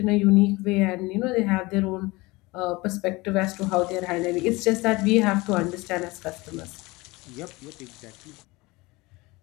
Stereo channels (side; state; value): right; quieter; 22.6 dB